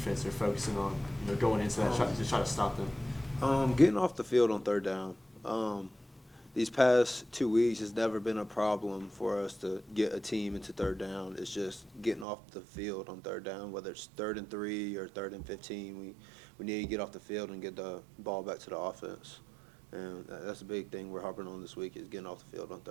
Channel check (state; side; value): drops out; left; at 12.2 s